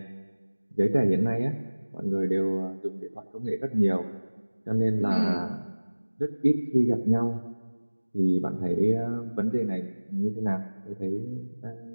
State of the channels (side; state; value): both; inverted; correlation -1.00